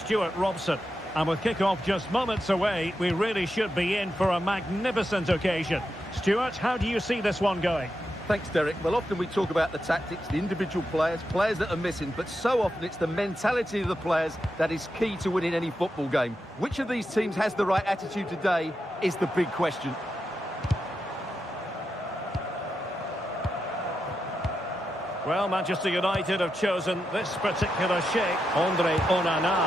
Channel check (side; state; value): both; normal; correlation 0.87